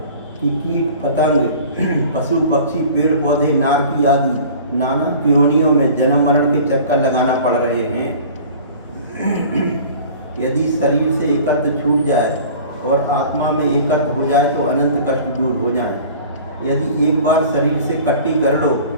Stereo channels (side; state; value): both; inverted; correlation -0.43